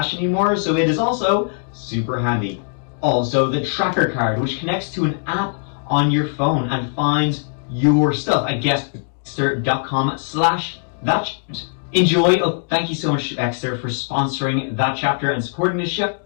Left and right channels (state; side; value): silent; right; digital silence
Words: anymore, so it is also super handy. Also, the tracker card, which connects to an app on your phone and finds your stuff at Exter.com/that. Enjoy. Oh, thank you so much, Exter, for sponsoring that chapter and supporting this show.